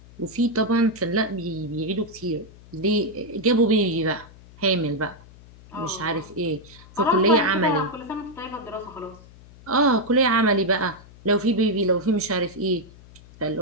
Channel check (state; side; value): noise; left; hum, 22 dB below the sound